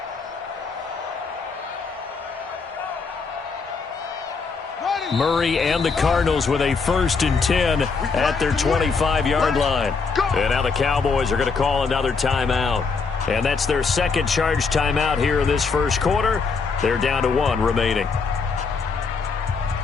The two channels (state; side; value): quieter; right; 4.9 dB